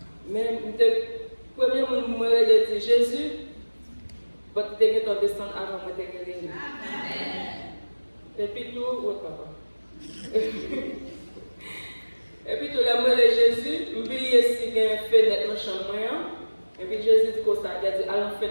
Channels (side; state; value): both; inverted; correlation -1.00